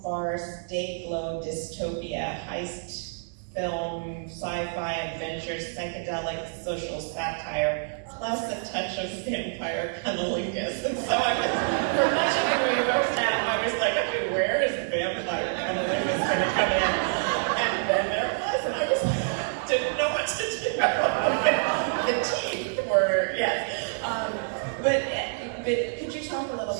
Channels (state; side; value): silent; left; digital silence